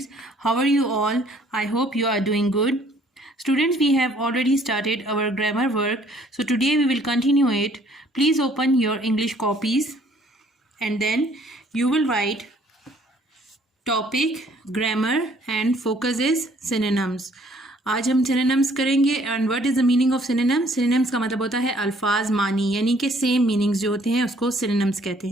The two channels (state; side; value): normal; both; correlation 0.60